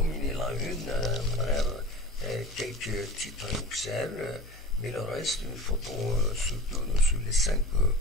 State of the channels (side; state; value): both; normal; correlation 0.36